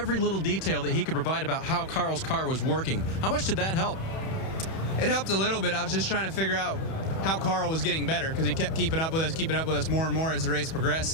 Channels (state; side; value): late; right; 31 ms